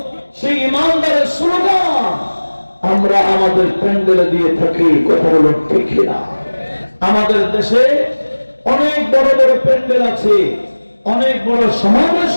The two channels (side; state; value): both; inverted; correlation -1.00